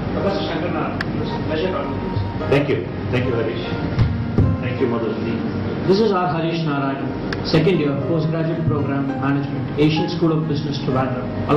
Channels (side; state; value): both; identical; correlation 1.00